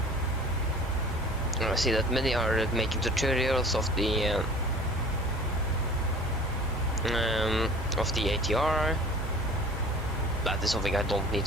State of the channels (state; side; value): normal; both; correlation 0.44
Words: I see that many are making tutorials of the ATR. That is something I don't need